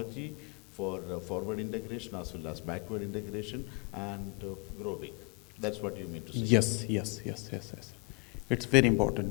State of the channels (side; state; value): right; quieter; 29.3 dB